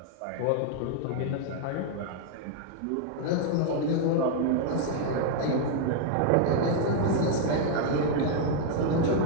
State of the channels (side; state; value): both; different; correlation 0.00